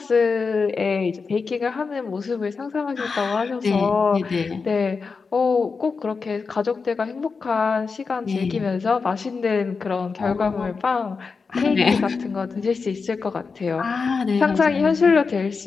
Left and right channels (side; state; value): right; quieter; 4.8 dB